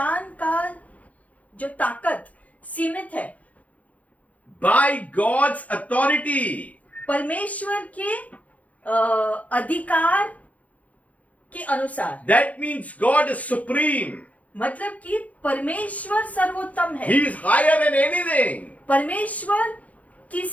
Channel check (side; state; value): right; late; 0.068 ms